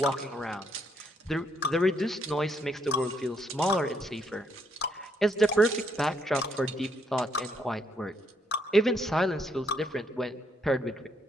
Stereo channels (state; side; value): normal; both; correlation 0.72